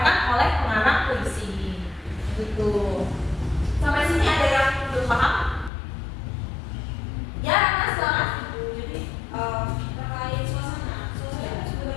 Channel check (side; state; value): right; drops out; at 5.7 s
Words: oleh pengarang puisi. Gitu. Sampai sini ada yang belum paham? Ya, Mas, silakan. Jadi terkait suasana